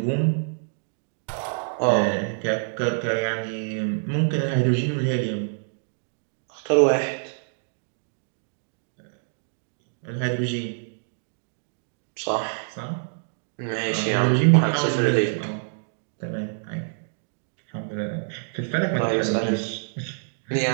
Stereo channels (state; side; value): silent; left; digital silence